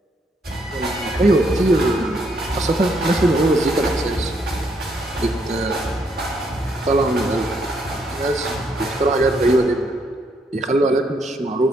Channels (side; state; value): both; normal; correlation 0.73